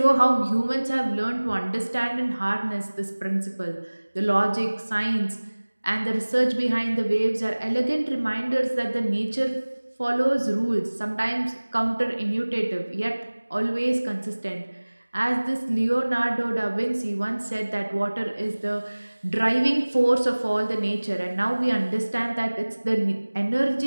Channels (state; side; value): inverted; both; correlation -1.00